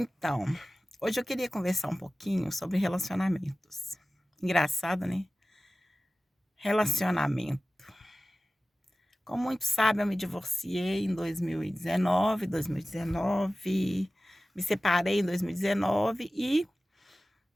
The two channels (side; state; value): both; normal; correlation 0.96